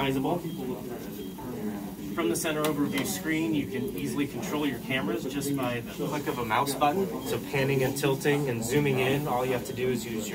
From the center overview screen, you can easily control your cameras just by the click of a mouse button. So panning and tilting and zooming in, all you have to do is use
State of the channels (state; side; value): identical; both; correlation 1.00